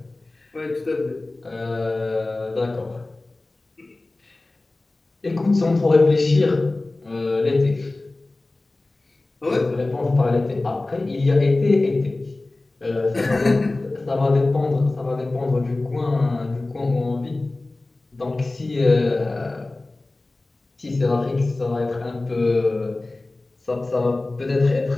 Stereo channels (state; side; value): quieter; right; 3.0 dB